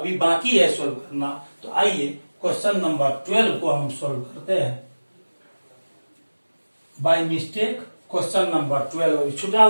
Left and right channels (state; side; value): inverted; both; correlation -1.00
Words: बाकी है सॉल्व करना, तो आइए क्वेश्चन नंबर 12 को हम सॉल्व करते हैं। बाय मिस्टेक क्वेश्चन नंबर 12 अभी छूटा